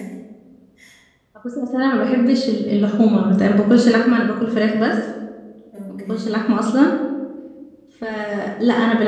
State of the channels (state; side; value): identical; both; correlation 1.00